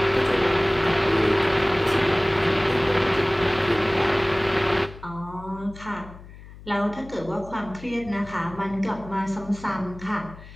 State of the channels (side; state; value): left; noise; hum, 17 dB below the sound